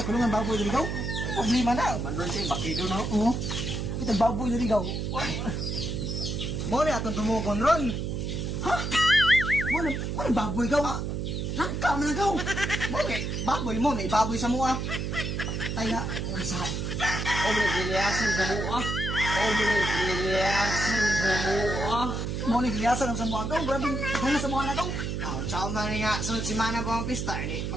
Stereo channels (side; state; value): right; noise; hum, 2 dB below the sound